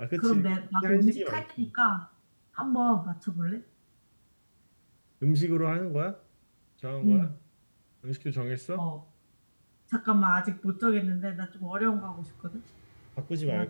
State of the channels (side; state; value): both; inverted; correlation -1.00